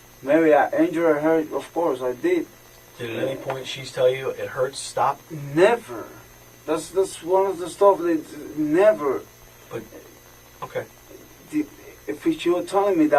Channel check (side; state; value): both; identical; correlation 1.00